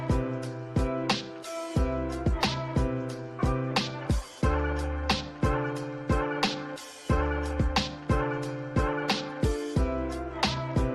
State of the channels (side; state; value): both; identical; correlation 1.00